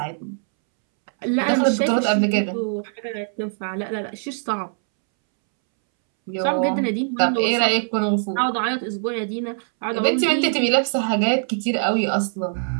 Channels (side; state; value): left; silent; 64 dB below the other